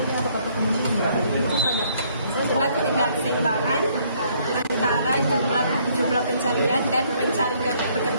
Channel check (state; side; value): inverted; both; correlation -0.66